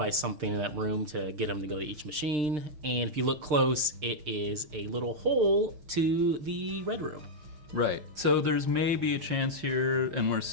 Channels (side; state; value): left; late; 6.7 ms